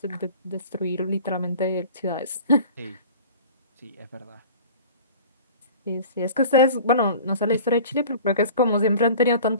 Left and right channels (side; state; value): both; inverted; correlation -0.43